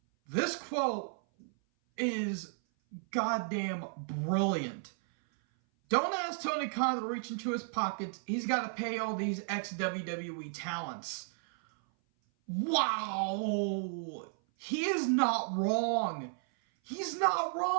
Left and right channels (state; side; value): silent; left; 55 dB below the other